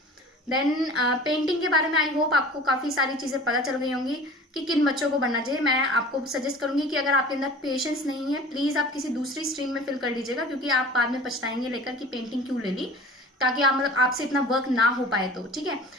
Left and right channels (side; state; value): both; normal; correlation 0.42